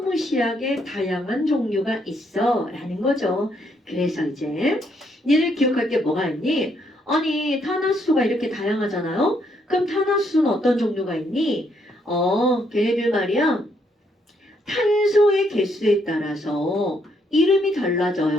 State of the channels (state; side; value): normal; both; correlation 0.73